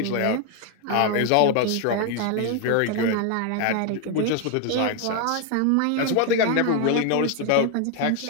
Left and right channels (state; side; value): different; both; correlation 0.01